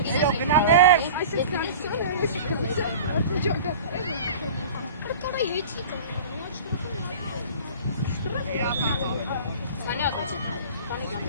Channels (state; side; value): inverted; both; correlation -0.39